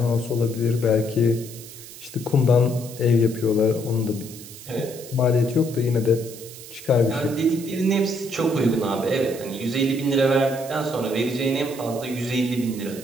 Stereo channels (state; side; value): noise; right; hiss, 15 dB below the sound